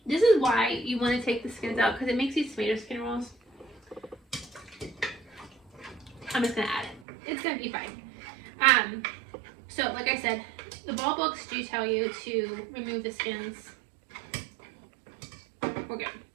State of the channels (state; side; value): drops out; left; at 7.1 s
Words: This is why you want to take the skins out, because it makes these tomato skin rolls. I'm just gonna add it. It's gonna be fine. So like I said, the ball books do tell you to remove the skins. We're good.